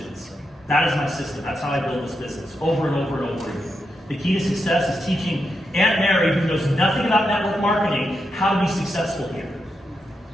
That is my system. That's how I build this business, over and over and over again. The key to success is teaching Aunt Mary, who knows nothing about network marketing, how to be successful here.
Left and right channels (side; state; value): both; normal; correlation 0.85